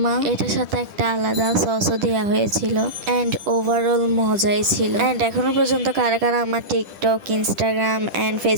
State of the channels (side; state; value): left; late; 10 ms